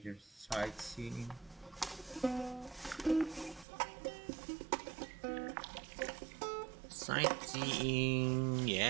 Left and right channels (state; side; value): drops out; left; at 3.7 s